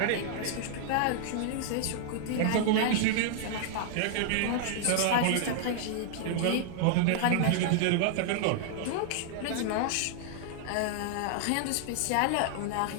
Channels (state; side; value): different; both; correlation -0.01